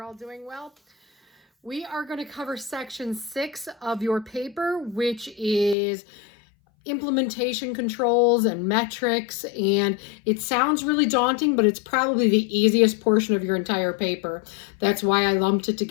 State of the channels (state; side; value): drops out; right; at 5.8 s